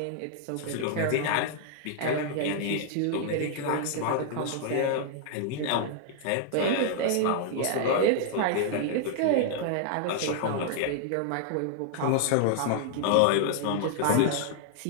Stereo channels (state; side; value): different; both; correlation -0.01